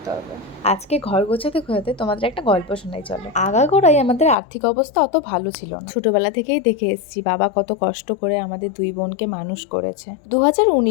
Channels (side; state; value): right; drops out; at 4.4 s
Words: হবে। আজকে ঘর গোছাতে গোছাতে তোমাদের একটা গল্প শোনাই চলো। আগাগোড়াই আমাদের আর্থিক অবস্থা অত ভালো ছিল না। ছোটবেলা থেকেই দেখে এসেছি বাবা কত কষ্ট করে আমাদের দুই বোনকে মানুষ করেছে।